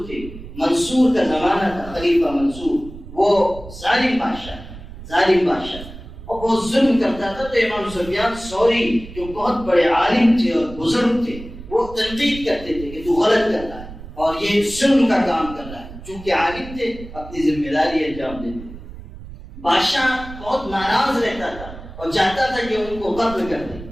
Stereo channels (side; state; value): right; noise; rumble, 14 dB below the sound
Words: تھے۔ منصور کا زمانہ تھا، خلیفہ منصور، وہ ظالم بادشاہ اور بہت ظلم کرتا تھا، تو امام سفیان ثوری جو بہت بڑے عالم تھے اور بزرگ تھے، وہ تنقید کرتے تھے کہ تو غلط کر رہا ہے اور یہ ظلم کا کام کر رہا ہے۔ چونکہ عالم تھے، اپنی ذمہ داری انجام دیتے۔ بادشاہ بہت ناراض رہتا تھا اور چاہتا تھا کہ ان کو قتل کر دے،